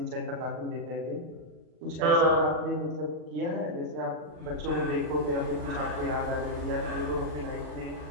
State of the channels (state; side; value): late; left; 39 ms